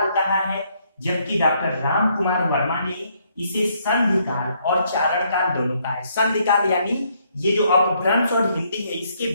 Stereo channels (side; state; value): both; inverted; correlation -0.71